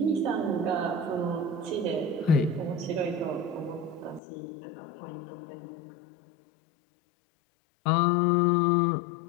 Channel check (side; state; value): right; drops out; at 4.2 s